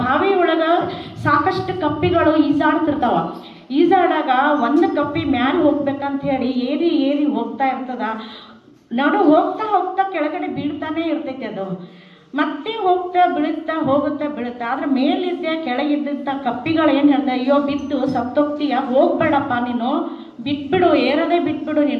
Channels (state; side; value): identical; both; correlation 1.00